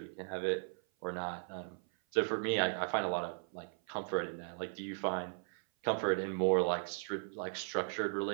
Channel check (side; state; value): left; silent; 53 dB below the other